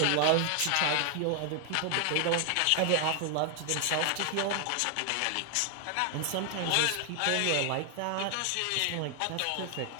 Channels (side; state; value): both; different; correlation 0.00